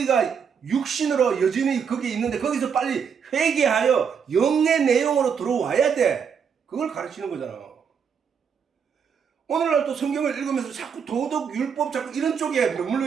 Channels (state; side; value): quieter; left; 6.9 dB